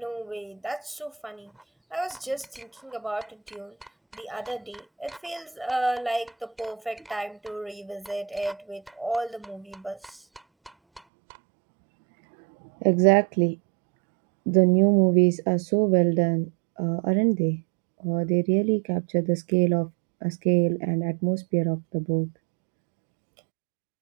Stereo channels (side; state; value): left; drops out; at 11.0 s